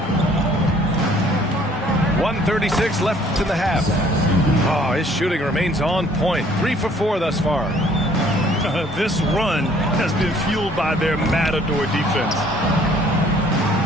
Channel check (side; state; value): both; normal; correlation 0.58